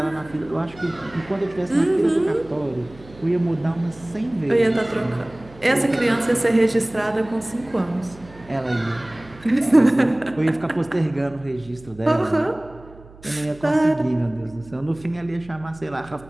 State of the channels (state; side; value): noise; right; hum, 22 dB below the sound